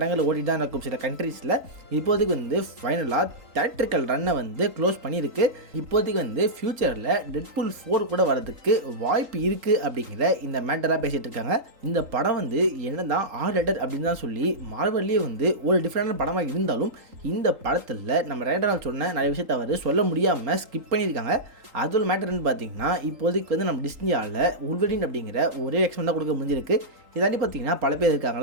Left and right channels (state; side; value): late; left; 3.8 ms